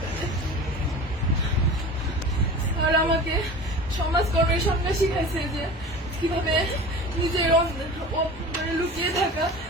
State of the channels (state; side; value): normal; both; correlation 0.36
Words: আর আমাকে সমাজকর্মের সঙ্গে শিখাইছে যে কিভাবে নিজের লুকিয়ে থাকা